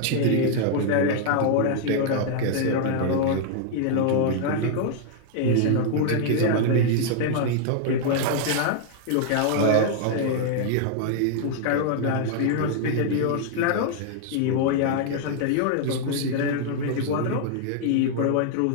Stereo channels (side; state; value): both; different; correlation -0.01